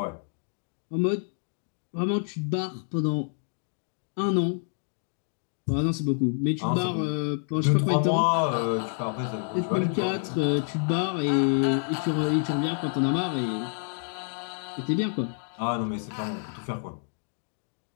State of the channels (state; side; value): silent; right; 56 dB below the other